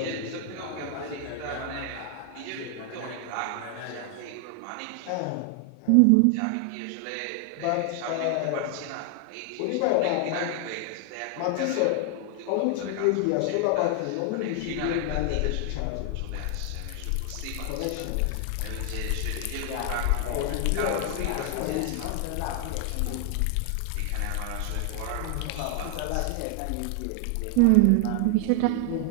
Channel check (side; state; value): both; different; correlation 0.00